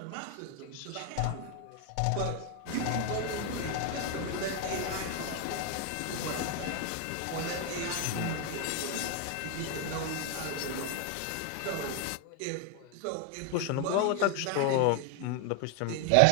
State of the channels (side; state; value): both; different; correlation 0.01